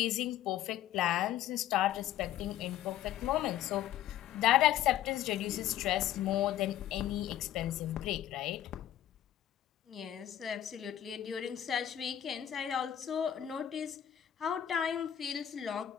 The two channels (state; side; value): quieter; right; 11.6 dB